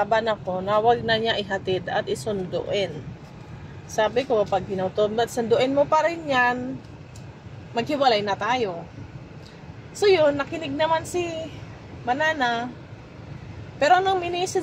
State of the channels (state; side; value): identical; both; correlation 1.00